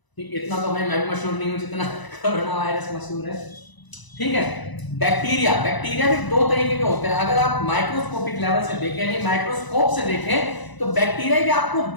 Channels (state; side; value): late; right; 1.0 ms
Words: ठीक, इतना तो भाई मैं भी मशहूर नहीं हूं जितना कोरोना वायरस मशहूर है। ठीक है, बैक्टीरिया, बैक्टीरिया भी दो तरीके के होते हैं। अगर आप माइक्रोस्कोपिक लेवल से देखें, यानी माइक्रोस्कोप से देखें, तो बैक्टीरिया भी आपको